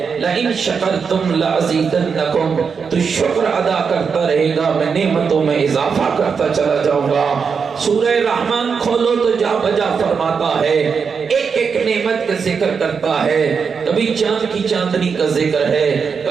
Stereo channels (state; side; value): quieter; left; 5.9 dB